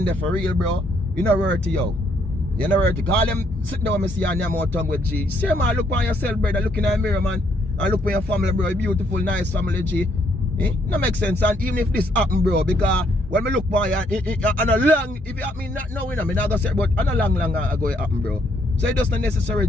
for real, bro, you know worth it, yo. You know worth it. Call them sitting down and see your Nyam out tongue with G. Say man, look on yourself, brother, look in the mirror, man. And look for your family, bro. Beautiful, nice family, G. No make sense. And even if this happen, bro, because when me look for you, and a long, if it happen not now, you know, me not gonna say, but on a long ago it happen, bro. So it just not necessary,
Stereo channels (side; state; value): both; normal; correlation 0.71